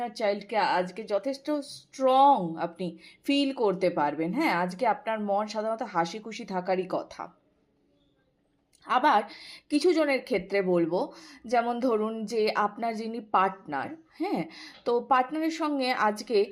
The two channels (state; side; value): identical; both; correlation 1.00